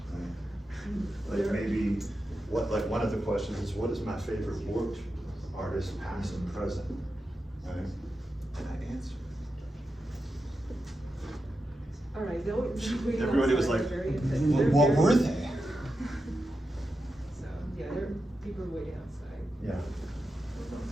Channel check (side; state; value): both; normal; correlation 0.89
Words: Right? Like maybe like one of the questions is, what is my favorite work artist, past and present? Right? And I answer. All right, they'll be Everybody was outside, like, very what very- were they? So yeah, there are people waiting outside. Yeah.